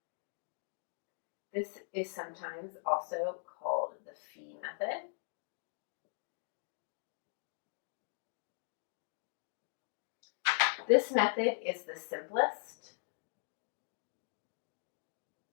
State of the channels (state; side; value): silent; right; digital silence